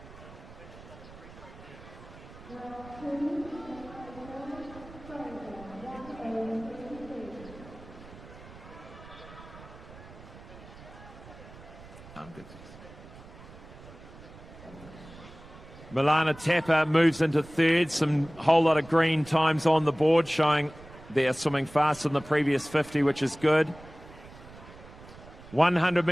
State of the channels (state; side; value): noise; right; rumble, 18 dB below the sound